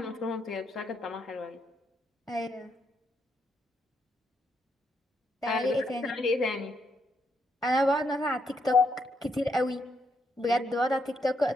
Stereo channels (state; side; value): normal; both; correlation 0.77